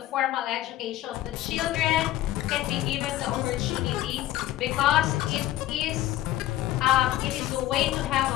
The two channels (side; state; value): right; quieter; 14.3 dB